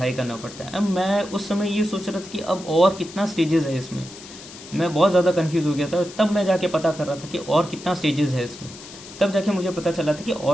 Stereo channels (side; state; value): left; noise; hiss, 16 dB below the sound